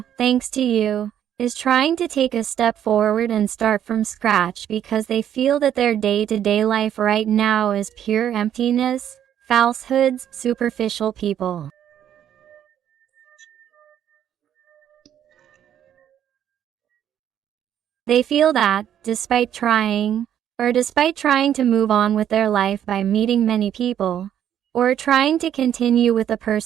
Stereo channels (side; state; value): left; quieter; 10.1 dB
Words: thanks to you, is trying to take a step forward and start from scratch, because they feel that their day-to-day life right now is pure emptiness, falsehoods, superficial people. They feel that, despite trying to move on with their life by meeting many people, or trying to continue with the